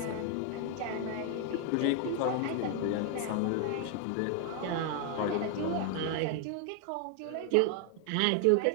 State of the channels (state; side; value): different; both; correlation 0.00